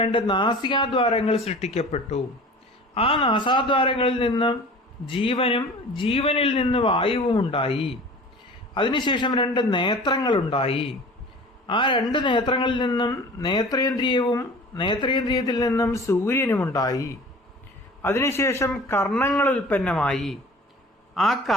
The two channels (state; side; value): normal; both; correlation 0.42